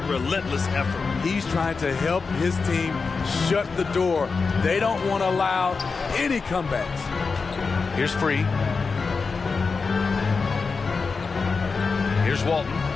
effort. He's trying to help his team shut the door. They don't want to allow any comebacks. Here's Free. Here's Walton.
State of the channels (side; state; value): right; quieter; 4.7 dB